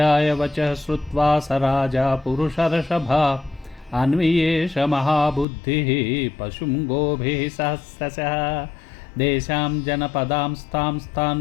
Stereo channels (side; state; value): right; drops out; at 5.5 s